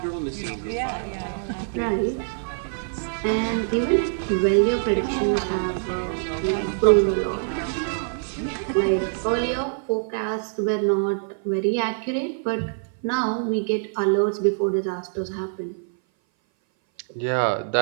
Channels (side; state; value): left; silent; 58 dB below the other